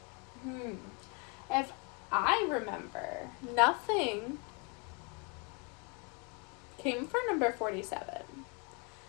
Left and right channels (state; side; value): quieter; right; 31.9 dB